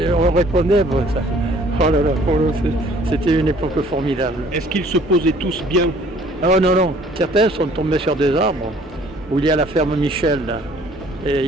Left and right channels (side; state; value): both; normal; correlation 0.56